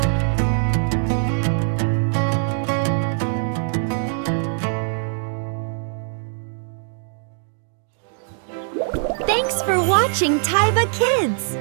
Thanks for watching Taiba Kids!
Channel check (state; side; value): silent; left; 64 dB below the other